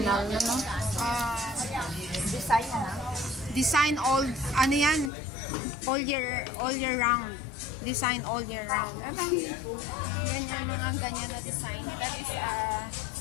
Design na. Design ano yan? All year round. Design all year round. Yan yung mga ganyan na design. That is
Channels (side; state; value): right; drops out; at 5.1 s